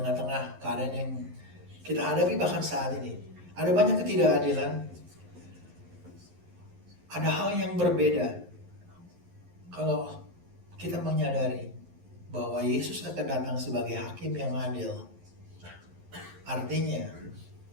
keadaan yang kita hadapi bahkan saat ini, ada banyak ketidakadilan, ada hal yang berbeda kalau kita menyadari bahwa Yesus akan datang sebagai hakim yang adil. Artinya,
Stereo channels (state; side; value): late; left; 11 ms